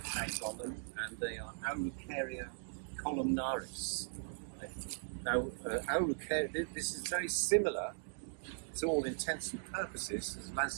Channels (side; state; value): left; silent; digital silence